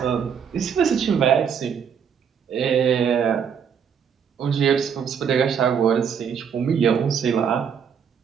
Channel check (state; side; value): quieter; left; 7.3 dB